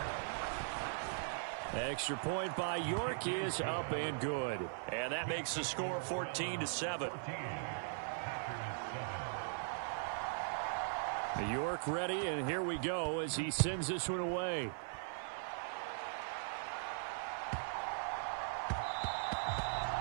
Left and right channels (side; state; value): left; silent; 51 dB below the other